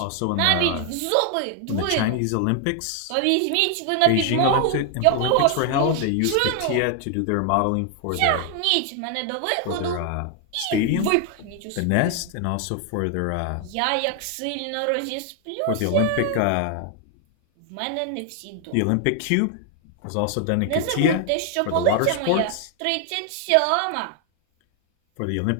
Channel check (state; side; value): different; both; correlation 0.00